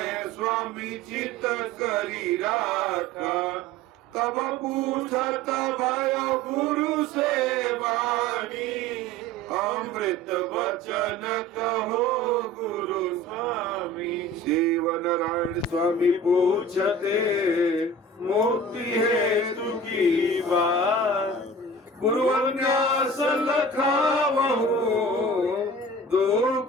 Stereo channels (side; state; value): both; normal; correlation 0.40